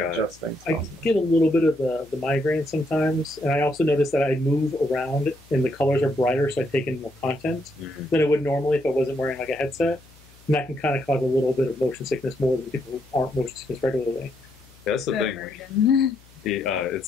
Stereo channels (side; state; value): left; noise; hum, 26 dB below the sound